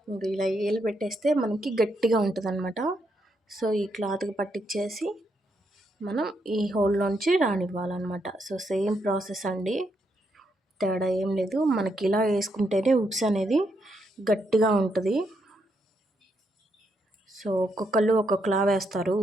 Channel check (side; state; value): both; normal; correlation 0.79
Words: ఇలా ఏలు పెట్టేస్తే మనకి గట్టిగా ఉంటుంది అనమాట. సో ఈ క్లాత్కి పట్టించేసి మనం ఈ హోల్లోంచి రానివ్వాలన్నమాట. సో సేమ్ ప్రాసెస్ అండి, తేడా ఏం లేదు. మనకి ఇలా వేసుకుంటేనే ఉక్స్ అనేది గట్టిగా ఉంటుంది. సో ఒక్కొక్కళ్ళు ఒక్కొక్కలా వేస్తారు